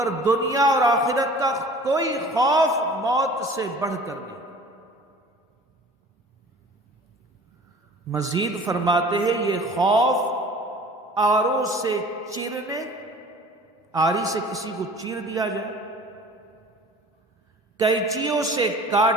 دنیا اور آخرت کا کوئی خوف موت سے بڑھ کر نہیں۔ مزید فرماتے ہیں یہ خوف آروں سے چیرنے، آری سے کسی کو چیر دیا جائے، کینچیوں سے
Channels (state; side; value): normal; both; correlation 0.45